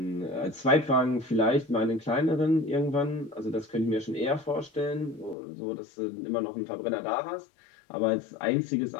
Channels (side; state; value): right; drops out; at 5.4 s